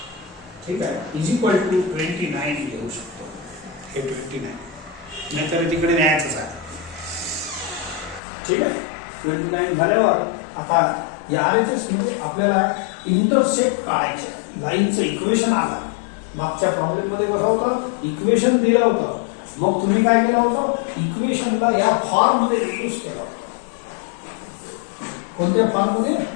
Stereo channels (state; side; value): drops out; right; at 8.2 s